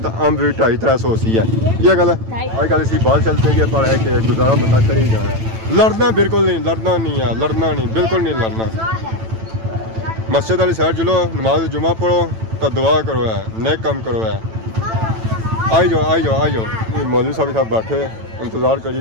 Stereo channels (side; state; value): left; late; 9.0 ms